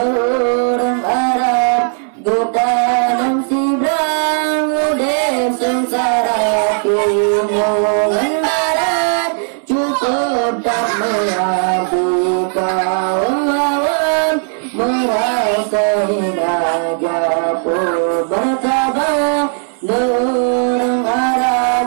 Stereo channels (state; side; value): silent; left; 63 dB below the other